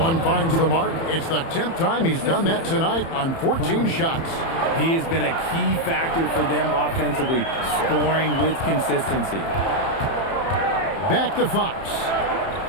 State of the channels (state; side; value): late; right; 30 ms